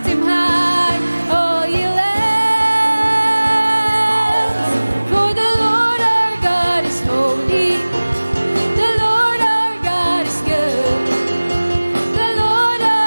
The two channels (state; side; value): inverted; both; correlation -1.00